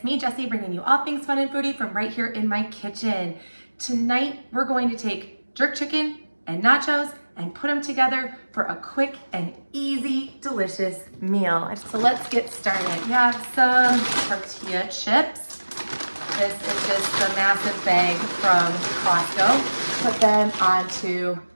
me Jessie bringing you all things fun and foodie from right here in my kitchen. Tonight we're going to take jerk chicken and nachos and put them together for a quick and easy, delicious meal. So let's get started. We have some tortilla chips. This is just a massive bag from Costco. Put them onto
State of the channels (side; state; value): both; inverted; correlation -1.00